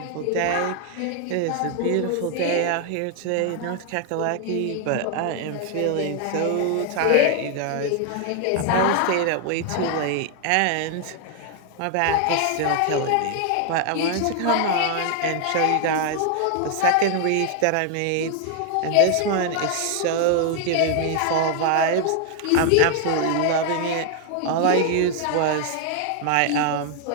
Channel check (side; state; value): both; different; correlation 0.00